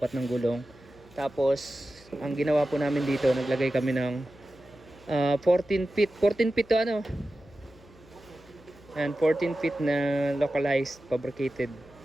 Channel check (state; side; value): noise; left; hum, 26 dB below the sound